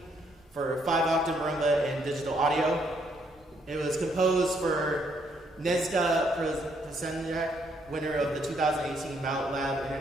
for 5-octave marimba and digital audio. It was composed for Nezda Przenjak, winner of the 2018 Mallet Lab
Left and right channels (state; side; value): normal; both; correlation 0.71